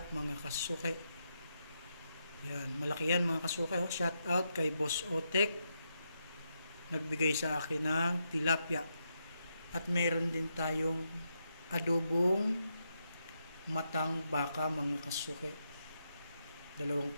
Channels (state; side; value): inverted; both; correlation -0.82